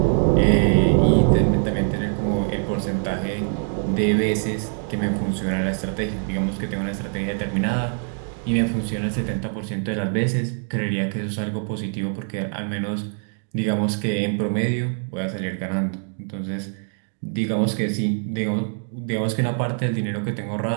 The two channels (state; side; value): silent; left; 55 dB below the other